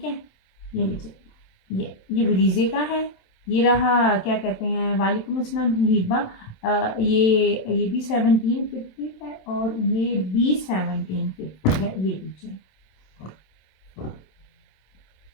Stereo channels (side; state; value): right; late; 27 ms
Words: है। ये लीजिए, ये ब्रीजे का है। ये रहा, क्या कहते हैं, वालेकुम अस्सलाम हिबा, ये भी 1750 है और ये भी 1750 है। ये लीजिए